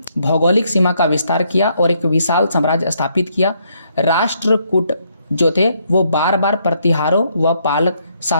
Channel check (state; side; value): inverted; both; correlation -0.73